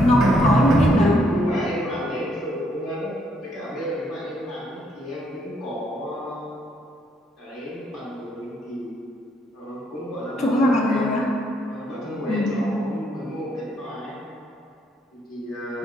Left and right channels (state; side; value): normal; both; correlation 0.72